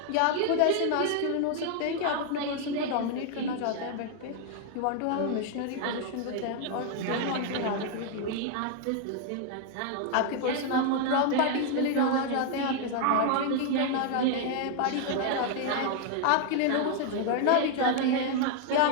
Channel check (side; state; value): both; different; correlation 0.00